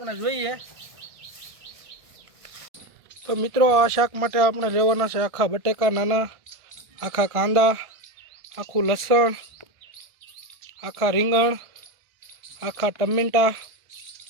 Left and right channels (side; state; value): left; late; 1.4 ms